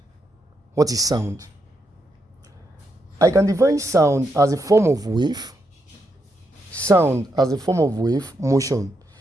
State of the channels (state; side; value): normal; both; correlation 0.81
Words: What is sound? I can define sound as a form of wave, motion